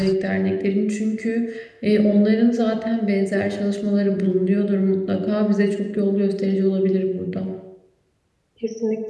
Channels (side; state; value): both; identical; correlation 1.00